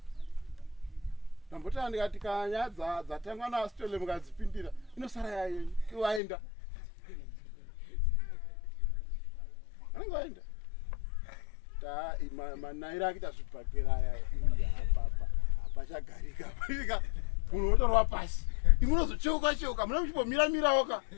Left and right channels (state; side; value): drops out; right; at 6.2 s